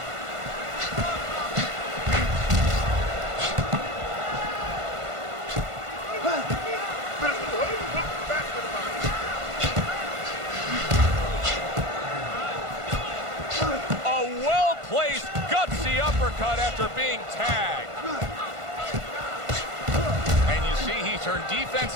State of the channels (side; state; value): left; late; 1.5 ms